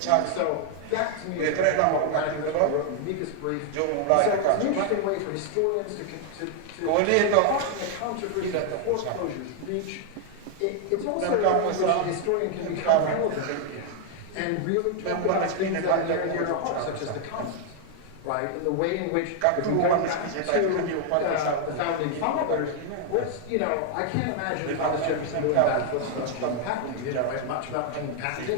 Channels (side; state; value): both; different; correlation 0.00